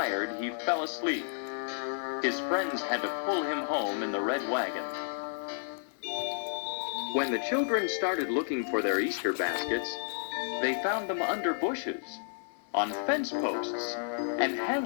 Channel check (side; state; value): right; silent; digital silence